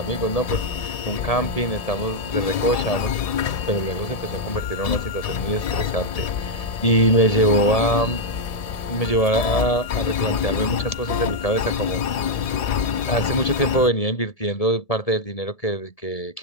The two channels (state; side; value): late; right; 1.7 ms